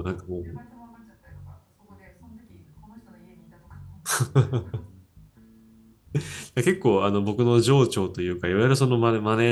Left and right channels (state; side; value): identical; both; correlation 1.00